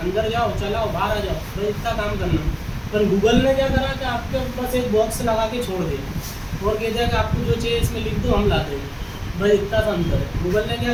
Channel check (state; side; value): identical; both; correlation 1.00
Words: अंदर जाओ, चलाओ, बाहर आ जाओ, बस इतना काम करना। पर गूगल ने क्या करा कि आपके बस एक बॉक्स लगा के छोड़ दिया और कहते हैं कि आपको जो चाहिए इसमें लिख दो, हम ला देंगे। बस इतना सा अंतर है। गूगल ने क्या